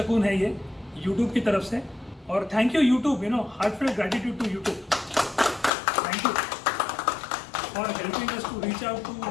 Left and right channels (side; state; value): right; drops out; at 5.7 s